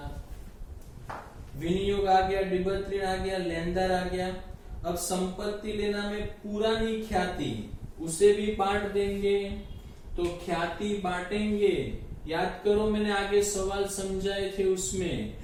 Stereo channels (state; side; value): identical; both; correlation 1.00